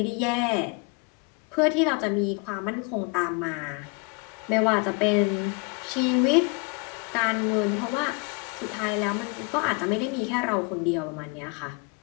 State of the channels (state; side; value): quieter; right; 30.1 dB